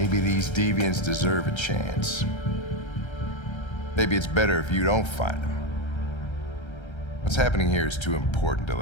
these deviants deserve a chance. Maybe it's better if you don't find him. What's happening here is too important to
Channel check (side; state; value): right; late; 1.3 ms